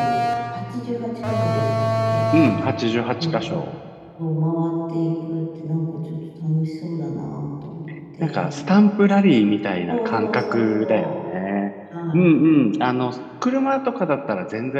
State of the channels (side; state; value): both; identical; correlation 1.00